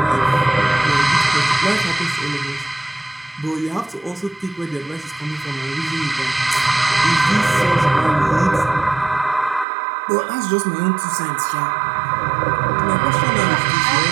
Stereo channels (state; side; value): drops out; left; at 9.7 s